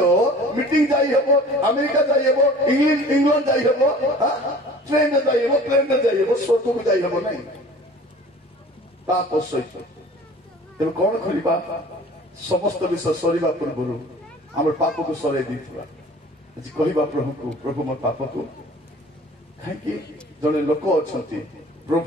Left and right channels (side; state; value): both; normal; correlation 0.46